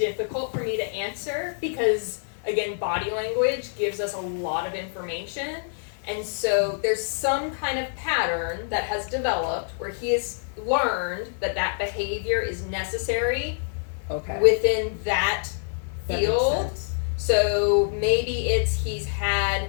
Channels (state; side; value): silent; right; digital silence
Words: for me to answer because, again, body language gives us a lot of information. And so there's some kind of pattern that has developed where he has learned that that behavior is necessary Okay. within that That makes field. sense. So maybe it's he's had